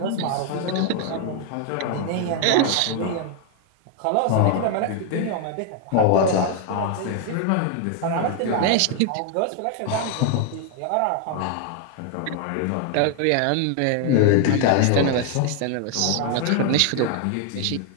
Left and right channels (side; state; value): both; different; correlation 0.00